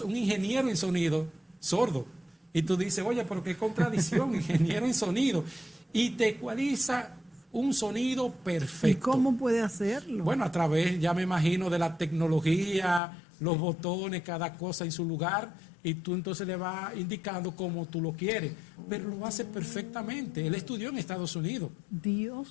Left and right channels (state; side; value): drops out; right; at 13.0 s